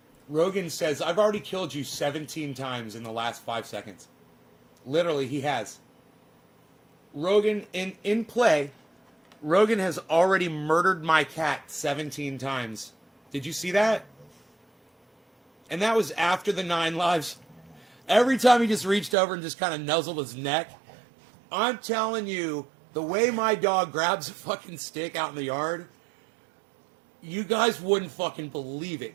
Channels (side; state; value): left; drops out; at 19.2 s